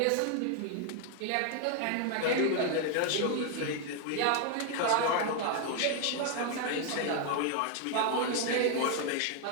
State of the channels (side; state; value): both; different; correlation 0.01